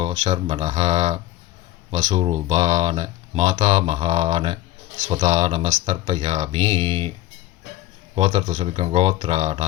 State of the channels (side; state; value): right; quieter; 15.2 dB